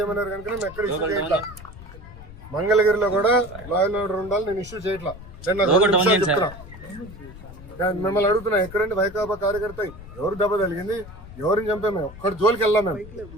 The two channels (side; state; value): left; noise; rumble, 16 dB below the sound